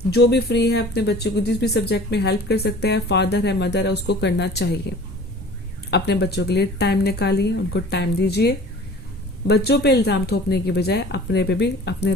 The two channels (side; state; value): both; normal; correlation 0.45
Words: जो भी फ्री है अपने बच्चे को जिस भी सब्जेक्ट में हेल्प कर सकते हैं, फादर है मदर है, उसको करना चाहिए। अपने बच्चों के लिए टाइम निकालिए, उनको टाइम दीजिए। बच्चों पे इल्जाम थोपने की बजाय अपने पे भी, अपने